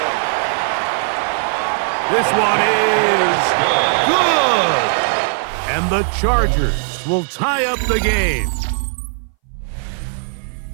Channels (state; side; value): silent; left; 62 dB below the other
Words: This one is good. And the Chargers will tie up the game.